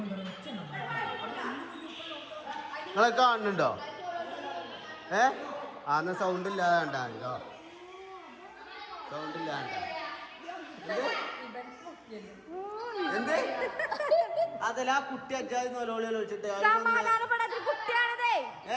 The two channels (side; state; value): both; identical; correlation 1.00